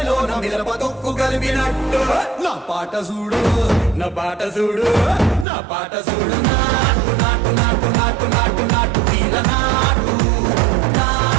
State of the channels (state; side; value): drops out; left; at 5.5 s